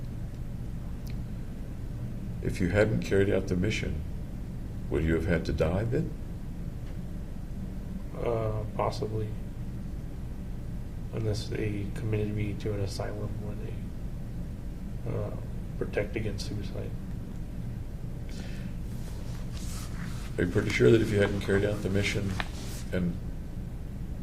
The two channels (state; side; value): identical; both; correlation 1.00